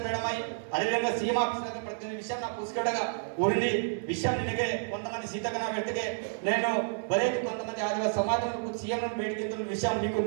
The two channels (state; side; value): silent; left; digital silence